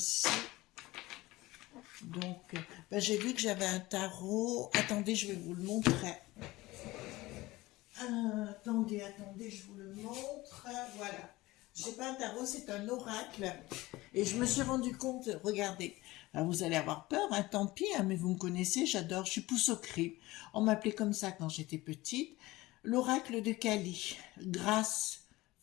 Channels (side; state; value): right; quieter; 19.3 dB